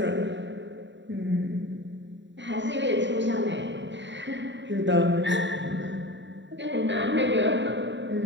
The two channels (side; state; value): left; late; 0.53 ms